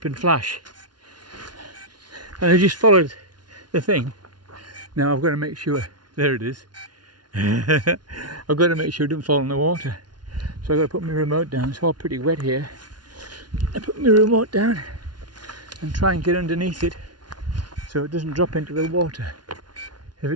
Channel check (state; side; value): late; left; 0.70 ms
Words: and flash. And I just followed the thing. Now I've got to make sure, there it is. I've got to make sure it doesn't fall in the water. So I've got to put my remote down. It's all pretty wet here. I put my remote down and try and get underneath it so it doesn't drop into the water. If